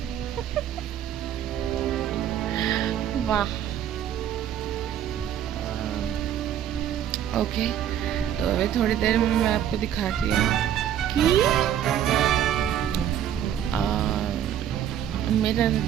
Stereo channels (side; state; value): left; quieter; 10.2 dB